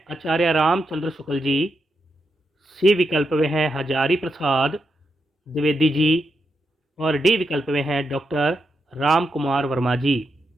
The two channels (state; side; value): normal; both; correlation 0.84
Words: आचार्य रामचंद्र शुक्ल जी, सी विकल्प में हैं हजारी प्रसाद द्विवेदी जी, और डी विकल्प में हैं डॉक्टर राम कुमार वर्मा जी।